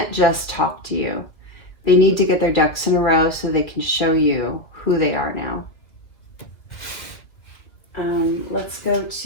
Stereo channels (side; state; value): right; late; 1.8 ms